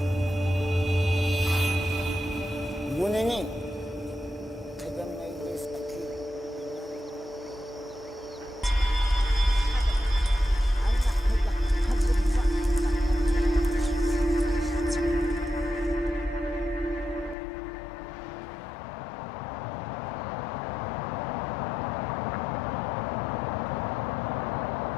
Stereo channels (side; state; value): right; drops out; at 17.4 s